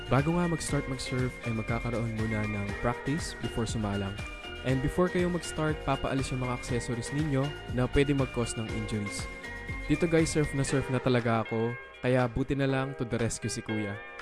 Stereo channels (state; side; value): identical; both; correlation 1.00